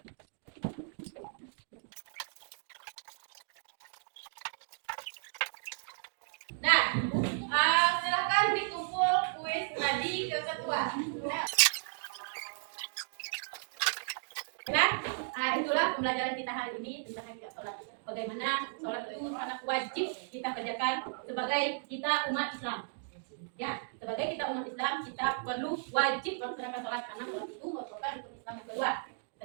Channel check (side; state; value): left; silent; digital silence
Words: Nah, silakan dikumpul kuis tadi ke ketua. Nah, itulah pembelajaran kita hari ini tentang hakikat sholat. Bagaimana sholat itu sangat wajib kita kerjakan sebagai kita umat Islam. Ya, sebagai kita umat Islam kita perlu wajib melaksanakan sholat karena sholat itu merupakan rukun Islam yang kedua.